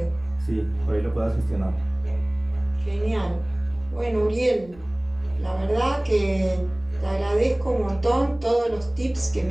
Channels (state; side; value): noise; left; rumble, 25 dB below the sound